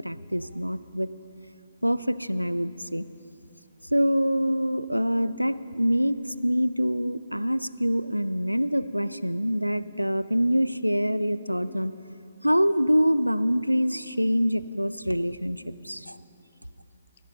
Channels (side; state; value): both; inverted; correlation -0.98